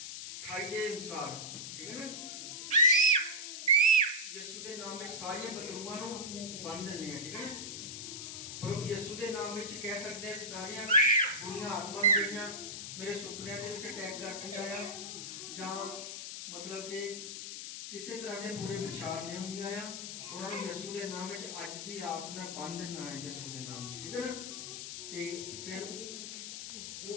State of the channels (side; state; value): left; noise; hiss, 7 dB below the sound